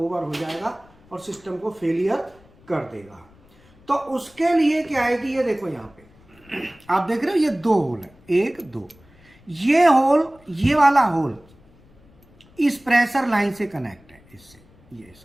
हो जाएगा और सिस्टम को फेलियर कर देगा। तो उसके लिए क्या है कि ये देखो यहाँ पे आप देख रहे हो, ये 2 होल है, 1 2, ये होल, ये वाला होल इस प्रेशर लाइन से कनेक्ट है, इससे, ये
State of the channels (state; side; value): noise; left; rumble, 28 dB below the sound